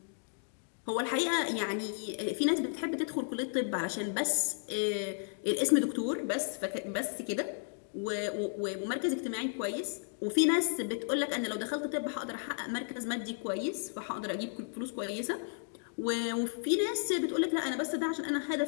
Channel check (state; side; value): silent; right; digital silence